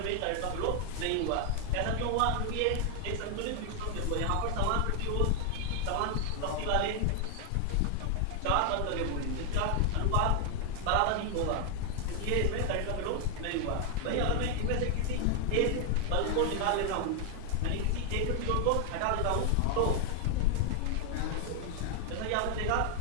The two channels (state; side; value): different; both; correlation 0.00